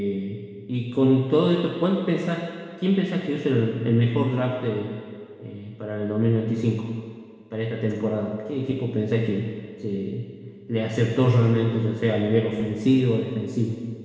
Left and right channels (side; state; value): both; identical; correlation 1.00